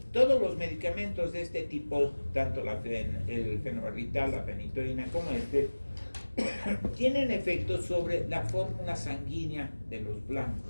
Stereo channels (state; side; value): inverted; both; correlation -1.00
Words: todos los medicamentos de este tipo, tanto el fenobarbital, la fenitoína como tienen efectos sobre la fórmula sanguínea de los